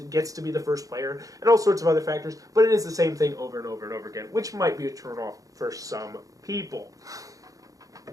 be the first player and all sorts of other factors, but it is the same thing over and over and over again, which might be a turnoff for some people.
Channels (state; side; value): late; left; 0.17 ms